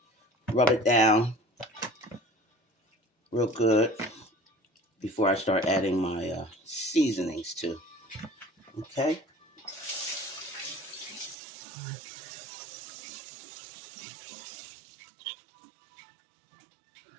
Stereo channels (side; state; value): left; drops out; at 11.4 s